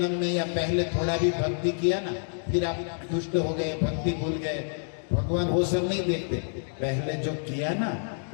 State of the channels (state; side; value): silent; right; digital silence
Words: में या पहले थोड़ा भी भक्ति किया ना, फिर आप दुष्ट हो गए, भक्ति भूल गए, भगवान वो सब नहीं देखते। पहले जो किया ना